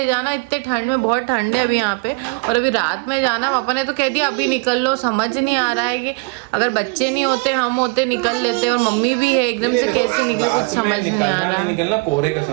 जाना इतने ठंड में, बहुत ठंड है अभी यहाँ पे, और अभी रात में जाना। पापा ने तो कह दिया अभी निकल लो। समझ नहीं आ रहा है कि अगर बच्चे नहीं होते, हम होते, निकल लेते, और मम्मी भी है, एकदम से कैसे निकले कुछ समझ नहीं आ रहा है। निकलना कोहरे का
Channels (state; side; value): quieter; left; 29.4 dB